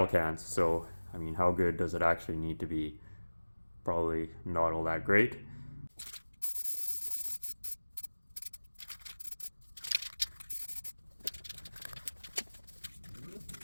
cans. So, I mean, how good does it actually need to be? Probably not all that great.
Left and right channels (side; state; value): both; inverted; correlation -1.00